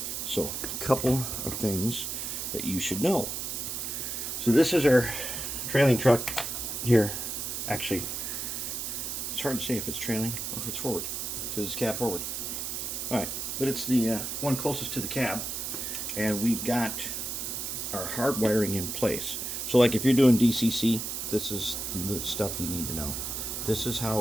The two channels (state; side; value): noise; right; hiss, 4 dB below the sound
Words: So, a couple of things that you should know. So this is our trailing truck here. Actually, it's hard to say if it's trailing or if it's forward because it's cab forward. All right, but it's the one closest to the cab, and we've got our hard wiring in place. So like if you're doing DCC, this is the stuff you need to know. This is